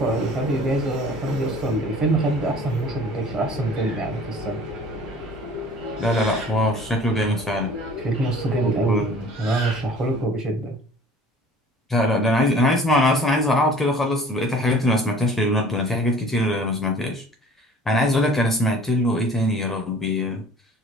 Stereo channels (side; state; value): both; normal; correlation 0.48